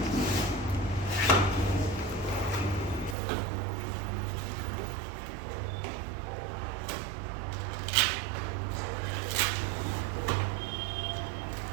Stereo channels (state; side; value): drops out; left; at 3.2 s